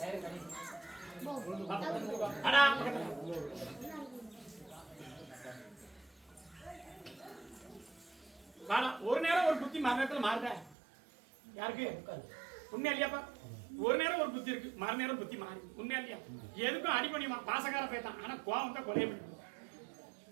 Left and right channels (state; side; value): drops out; left; at 10.8 s